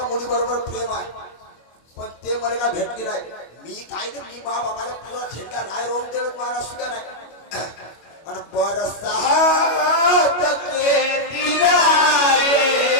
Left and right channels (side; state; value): right; late; 25 ms